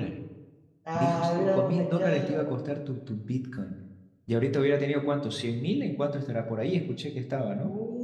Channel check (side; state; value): both; identical; correlation 1.00